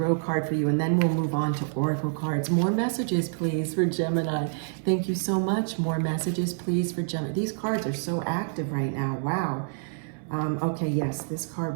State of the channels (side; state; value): left; silent; 60 dB below the other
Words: card for you, and then we'll move on to oracle cards. More messages, please, for Gemini. Thank you so much. More messages, please, for Gemini. These cards are so active right now. Wow. Okay, yes, this